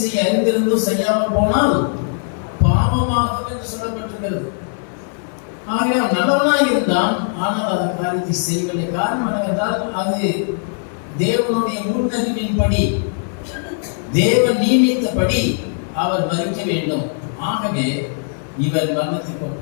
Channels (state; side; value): silent; right; digital silence